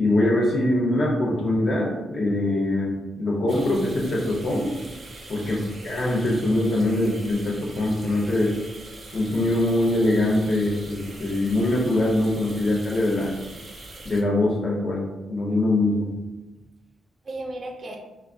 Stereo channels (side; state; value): both; normal; correlation 0.82